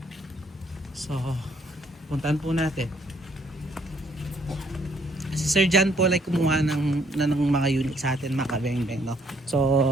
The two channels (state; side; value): normal; both; correlation 0.66